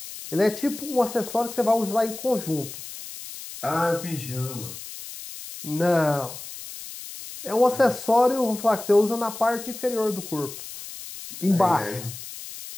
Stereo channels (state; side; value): noise; left; hiss, 12 dB below the sound